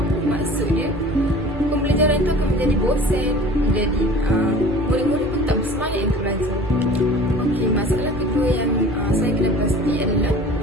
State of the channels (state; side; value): normal; both; correlation 0.44